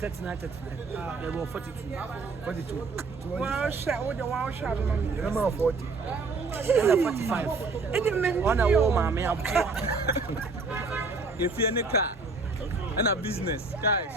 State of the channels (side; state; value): left; quieter; 3.9 dB